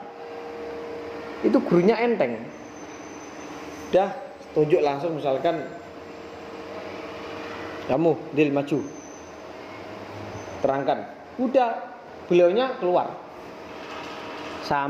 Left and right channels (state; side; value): identical; both; correlation 1.00